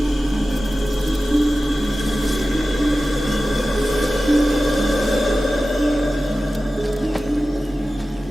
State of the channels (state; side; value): normal; both; correlation 0.94